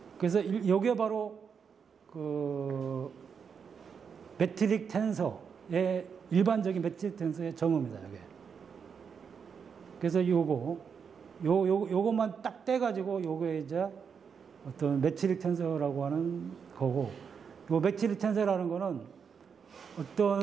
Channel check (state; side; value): quieter; left; 6.5 dB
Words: 그래서 요게 바로 그 매트릭 텐서의 일반적인 매트릭 텐서의 정의입니다. 요게. 그래서 요것만 딱 떼가지고 요게 이제 어떤 매트릭 텐서라고 하는 거고, 요 매트릭 텐서라는 거는